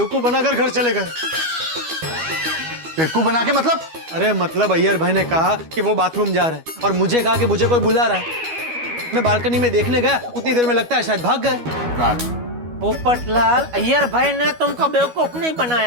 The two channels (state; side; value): late; left; 12 ms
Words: बनाकर घर चले गए। बेवकूफ बना के मतलब? अरे मतलब अय्यर भाई ने कहा कि वो बाथरूम जा रहे हैं और मुझे कहा कि मुझे कोई बुला रहा है। मैं बालकनी में देखने गया, उतनी देर में लगता है शायद भाग गए। पोपटलाल, अय्यर भाई ने तुमको बेवकूफ नहीं